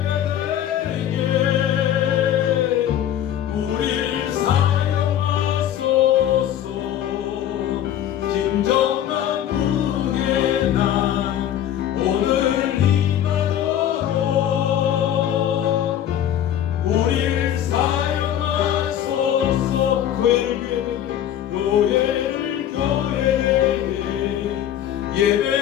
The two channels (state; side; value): quieter; right; 10.8 dB